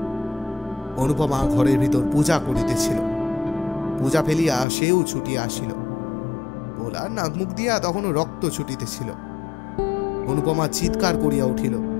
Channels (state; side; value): drops out; right; at 4.7 s